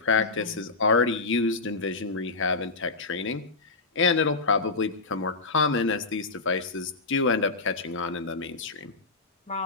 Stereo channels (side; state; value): right; quieter; 3.8 dB